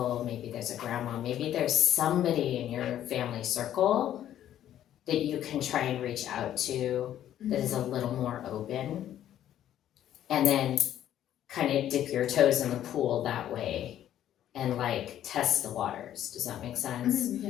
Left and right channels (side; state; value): right; quieter; 11.5 dB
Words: maybe there's a grandma, maybe there's somebody in your family circle that you can try and reach out to that is a little more open, and then kind of dip your toes in the pool that way and like test the waters. Does that make sense?